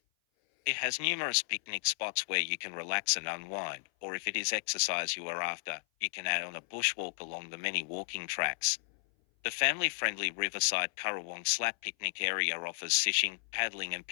It has numerous picnic spots where you can relax and unwind, or if it is exercise you are after, you can add on a bushwalk along the many walking tracks. The family-friendly riverside Currawong Slap Picnic Area offers fishing, paddling and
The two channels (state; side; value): silent; right; 55 dB below the other